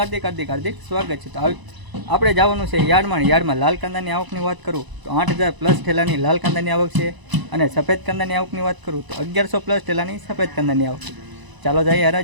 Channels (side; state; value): left; late; 1.0 ms